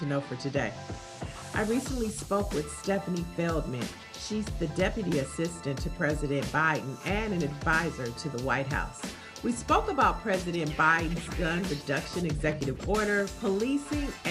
know for today. I recently spoke with Stefanie Feldman. She's the Deputy Assistant to President Biden and an advisor to the White House. We spoke about President Biden's gun reduction executive order, policing,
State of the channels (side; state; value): both; identical; correlation 1.00